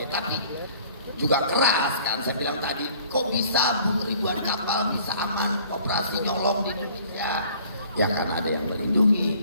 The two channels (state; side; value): inverted; both; correlation -0.53